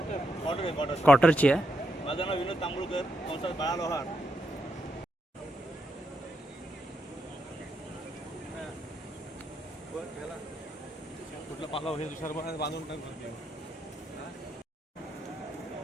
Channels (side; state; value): both; normal; correlation 0.81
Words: क्वार्टरची आहे। माझं नाव विनोद तांबुळकर, कंसात बाळा लोहार। कुठला पालाव हे दुसऱ्या बांधून टाकतो।